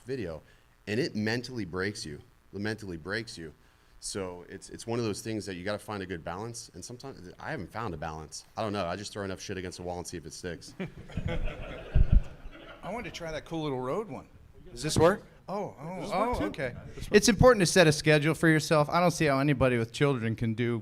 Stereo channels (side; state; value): both; identical; correlation 1.00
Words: video, and it mentally breaks you. It mentally breaks you. So it's one of those things that you got to find a good balance. And sometimes I haven't found a balance. I don't know. I just throw enough shit against the wall and see if it sticks. I wanted to try that cool little road one. Does this work? Oh, okay. It's important to set a schedule for yourself. I don't see how anybody with children can